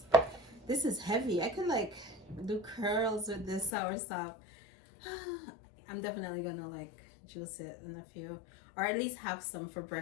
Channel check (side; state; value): right; drops out; at 3.7 s